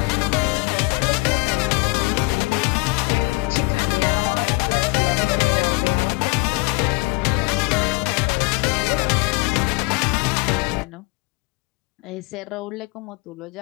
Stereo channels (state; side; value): quieter; right; 26.2 dB